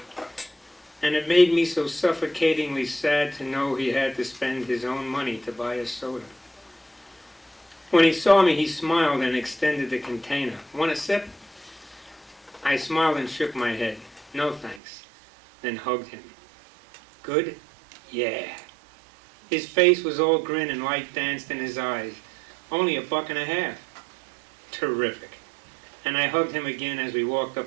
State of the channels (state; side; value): drops out; left; at 14.8 s